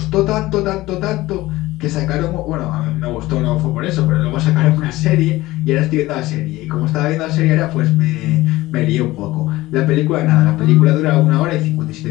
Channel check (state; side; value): quieter; right; 18.1 dB